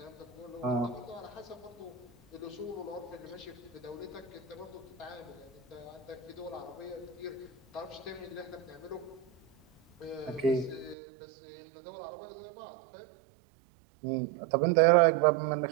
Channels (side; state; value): left; drops out; at 11.0 s